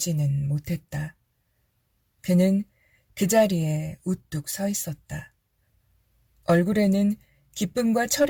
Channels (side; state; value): both; identical; correlation 1.00